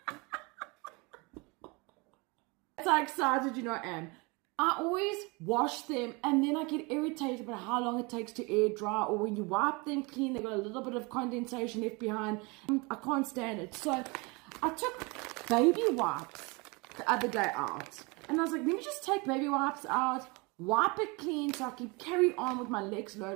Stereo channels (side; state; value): left; quieter; 27.7 dB